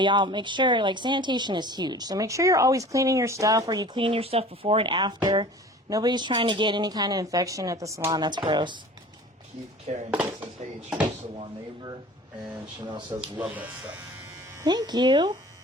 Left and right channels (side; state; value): both; normal; correlation 0.42